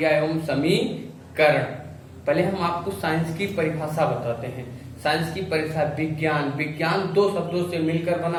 एवं समीकरण। पहले हम आपको साइंस की परिभाषा बताते हैं। साइंस की परिभाषा विज्ञान। विज्ञान दो शब्दों से मिलकर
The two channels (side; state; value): both; identical; correlation 1.00